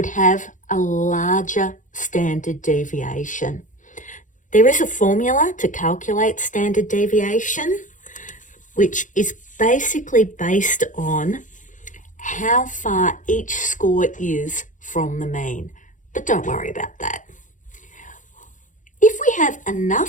have a larger standard deviation. There is a formula to calculate standard deviation, which is basically based on how far each score is from the mean. But don't worry about that. If we have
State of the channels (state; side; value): late; right; 0.37 ms